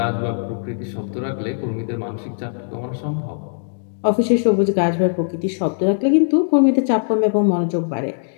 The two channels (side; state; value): right; silent; digital silence